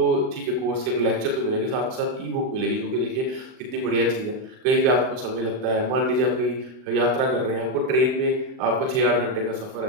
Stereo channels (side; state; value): left; late; 38 ms